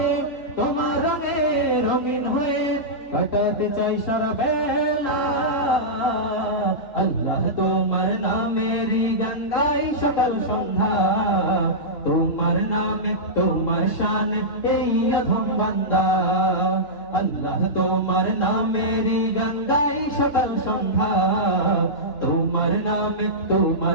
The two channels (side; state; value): right; late; 3.1 ms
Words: তোমার রঙে রঙিন হয়ে কাটাতে চাই সারা বেলা। আল্লাহ তোমার নামেরই গান গাই সকাল সন্ধ্যা, তোমার নামে তোমার শানে এই অধম বান্দা। আল্লাহ তোমার নামেরই গান গাই সকাল সন্ধ্যা, তোমার নামে